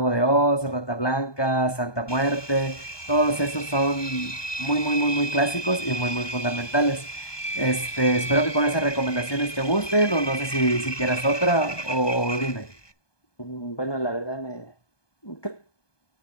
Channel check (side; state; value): right; late; 1.2 ms